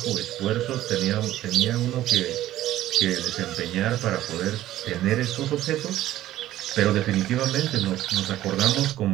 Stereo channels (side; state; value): left; quieter; 14.0 dB